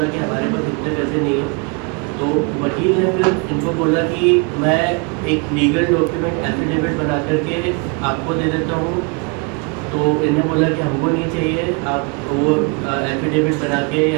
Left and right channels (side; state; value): left; quieter; 32.3 dB